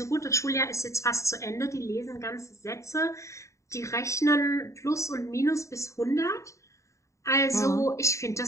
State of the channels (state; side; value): late; right; 0.15 ms